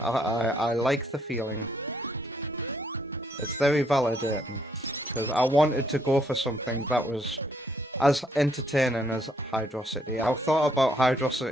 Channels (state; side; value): normal; both; correlation 0.70